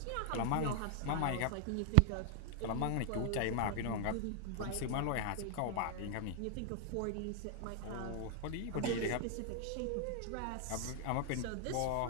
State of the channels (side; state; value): both; different; correlation 0.00